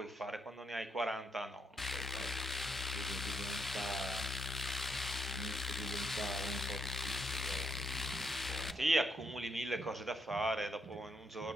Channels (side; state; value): both; normal; correlation 0.79